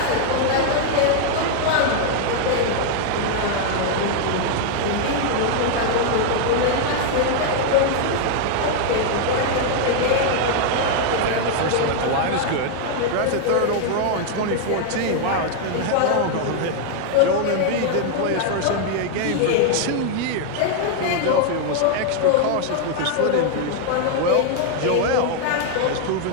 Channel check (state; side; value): different; both; correlation 0.00